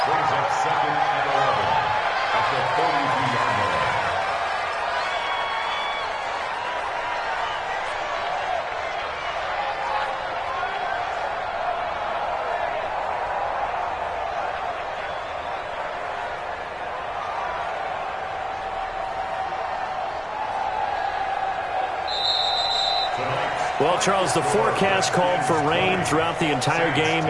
Well, Charles, the forecast called for rain throughout the entire game,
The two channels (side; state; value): both; identical; correlation 1.00